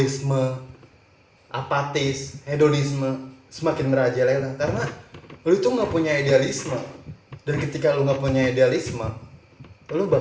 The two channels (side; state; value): both; identical; correlation 1.00